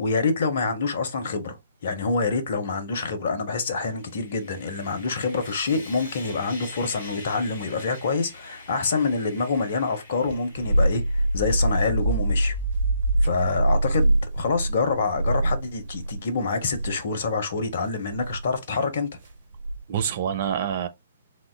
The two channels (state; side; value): inverted; both; correlation -0.71